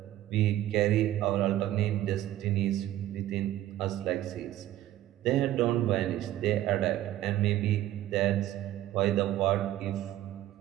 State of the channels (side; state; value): left; quieter; 13.7 dB